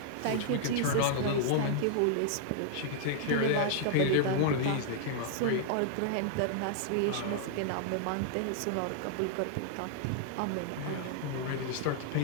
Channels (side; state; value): both; different; correlation -0.01